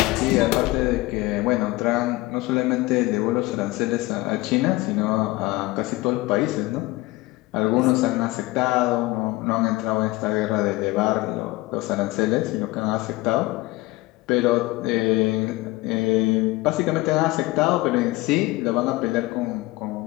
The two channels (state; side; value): quieter; right; 20.2 dB